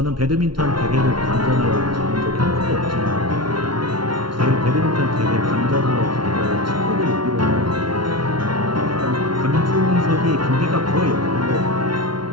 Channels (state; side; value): late; left; 0.73 ms